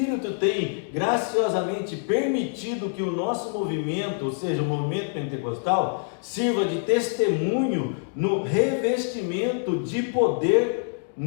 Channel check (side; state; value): right; silent; 61 dB below the other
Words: tem graciosamente permitido que o nosso movimento, ou seja, o movimento pentecostal, sirva de testemunho no revestimento de poder